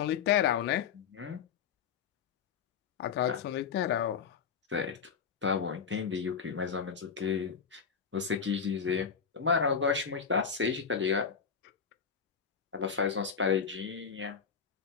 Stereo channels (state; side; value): quieter; right; 6.5 dB